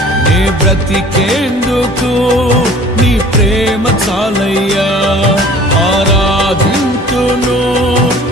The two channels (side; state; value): both; normal; correlation 0.48